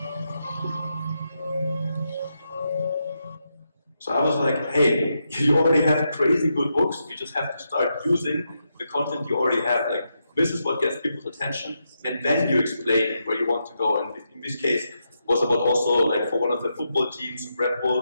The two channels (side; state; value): both; inverted; correlation -0.84